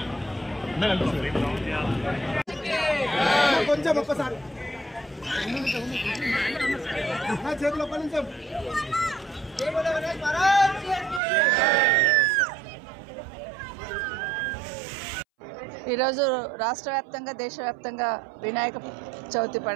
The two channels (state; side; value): drops out; left; at 11.2 s